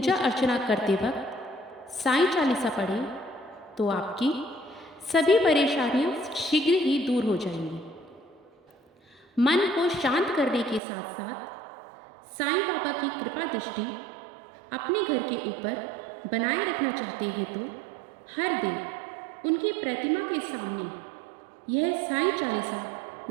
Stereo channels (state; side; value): drops out; left; at 10.8 s